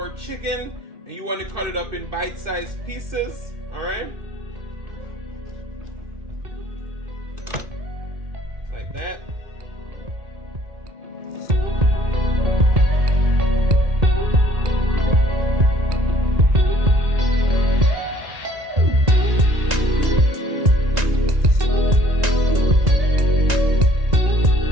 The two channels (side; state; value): left; late; 2.1 ms